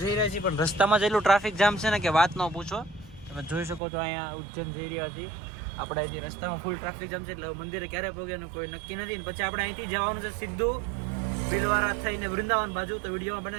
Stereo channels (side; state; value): left; drops out; at 3.8 s